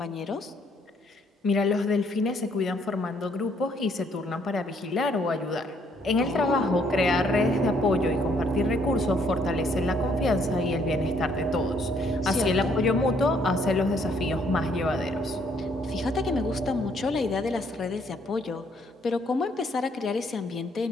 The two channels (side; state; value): both; normal; correlation 0.67